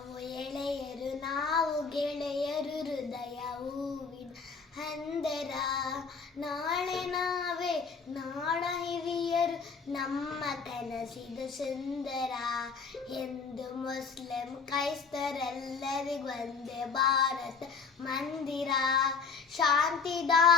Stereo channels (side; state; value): right; quieter; 5.2 dB